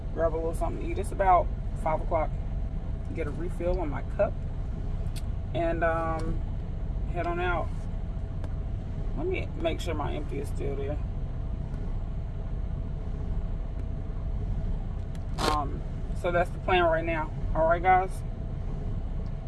a little something to eat. It's about 5 o'clock. Get a refill on my cup. And head on out. Let me make sure my empty is still there. So that's the plan right now. All right, guys.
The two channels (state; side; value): identical; both; correlation 1.00